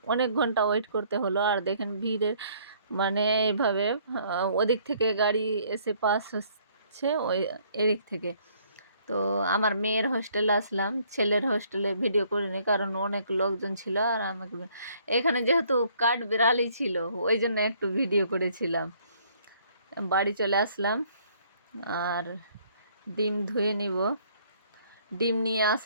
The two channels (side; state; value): both; inverted; correlation -0.63